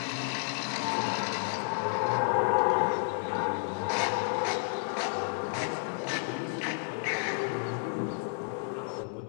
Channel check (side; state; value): right; silent; digital silence